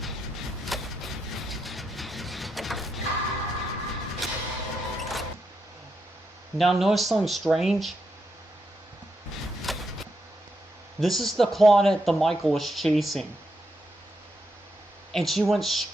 Now notice something strange. This is the Claudette the Michael was chasing. And she went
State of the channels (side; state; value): both; normal; correlation 0.82